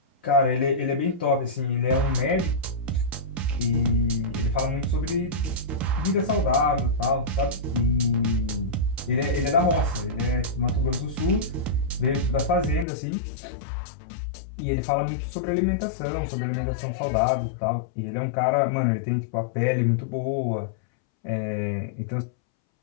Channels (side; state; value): right; drops out; at 12.9 s